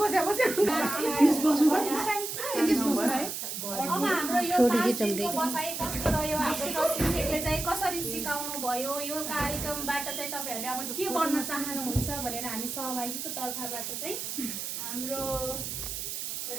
अब हाम्रो यो बसाइ कस्तो रह्यो हाम्रो शिक्षकले चाहिँ कसरी सिकाउनु भयो यो कार्यक्रमबाट चाहिँ तपाईँहरूले अब के बन्न चाहनुहुन्छ भनेर हामी सहभागीको तर्फबाट चाहिँ हाम्रो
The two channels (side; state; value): right; noise; hiss, 5 dB below the sound